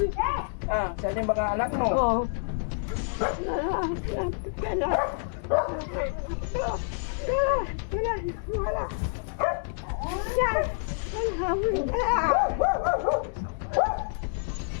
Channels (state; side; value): silent; right; digital silence